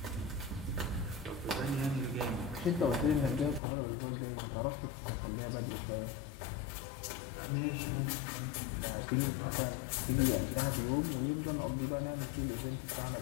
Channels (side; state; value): right; drops out; at 3.6 s